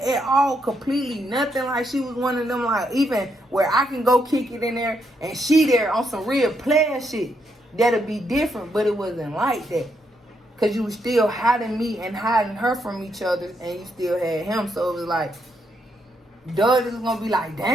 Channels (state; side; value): normal; both; correlation 0.78